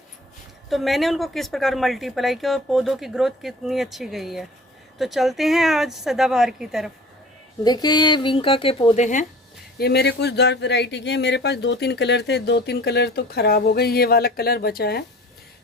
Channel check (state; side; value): normal; both; correlation 0.44